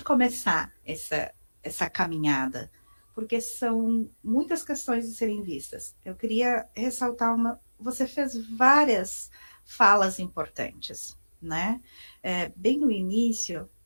começar essa caminhada? Porque são muitas questões de serem vistas. Eu queria ressaltar você fez várias falas importantes, né? Bem no início,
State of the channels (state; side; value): inverted; both; correlation -1.00